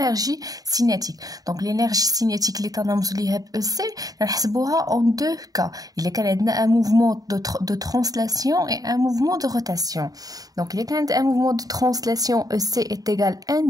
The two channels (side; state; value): left; late; 0.18 ms